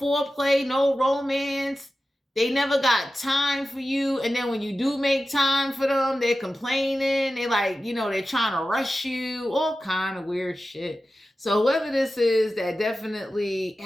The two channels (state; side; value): normal; both; correlation 0.94